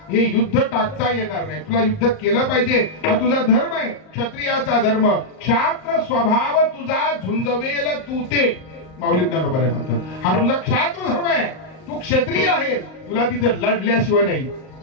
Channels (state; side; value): late; right; 38 ms